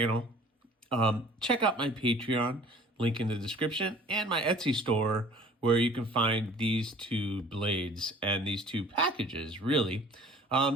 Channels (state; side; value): normal; both; correlation 0.49